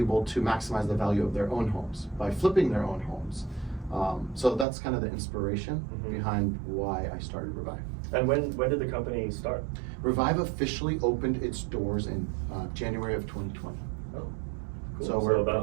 to maximize the value of their own homes by flipping their own homes. So that's kind of the inspiration behind why I started Revive. And when did the company start? Revive officially opened its doors in January of 2020. Oh, cool. So we're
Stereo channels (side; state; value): left; drops out; at 4.7 s